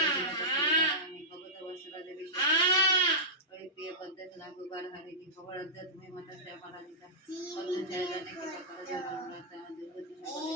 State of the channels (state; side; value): normal; both; correlation -0.15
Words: ভগত বৎসলা দেবী প্রিয় পদ্মে নাগুবার হারিণী খবরাধ্যা তুমি মাতা শ্যামলা দিতা পদ্ম ছায়া জানে কি করা যাবে দুর্গতি